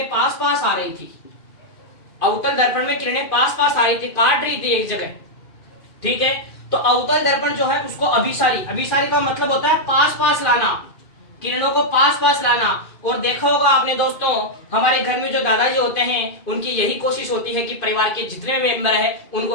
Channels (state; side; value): late; right; 2.5 ms